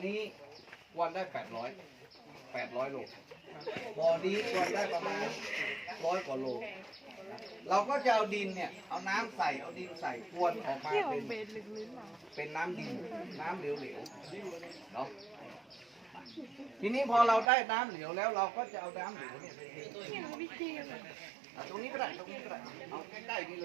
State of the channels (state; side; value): drops out; left; at 17.4 s